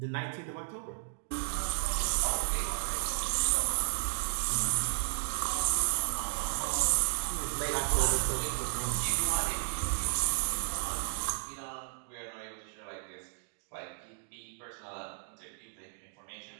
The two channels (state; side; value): silent; left; digital silence